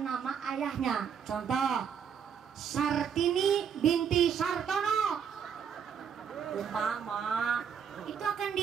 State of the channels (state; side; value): quieter; left; 7.5 dB